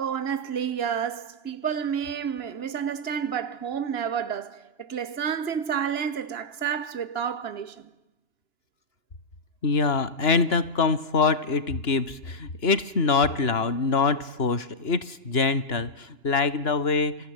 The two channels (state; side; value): late; right; 2.9 ms